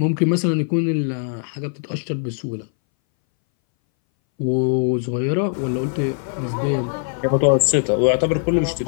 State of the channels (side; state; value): right; silent; 62 dB below the other